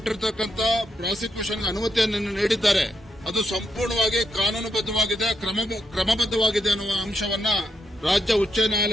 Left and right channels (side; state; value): both; normal; correlation 0.81